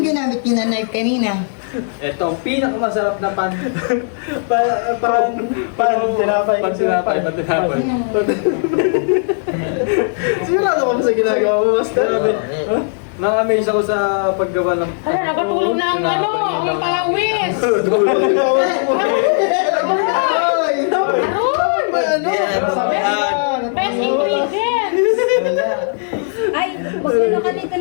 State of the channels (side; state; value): right; silent; 65 dB below the other